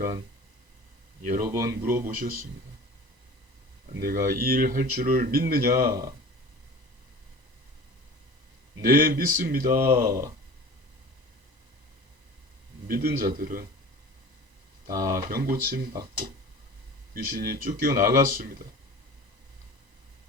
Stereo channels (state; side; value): late; left; 1.0 ms